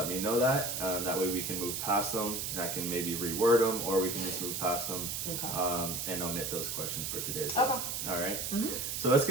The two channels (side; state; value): right; noise; hiss, 3 dB below the sound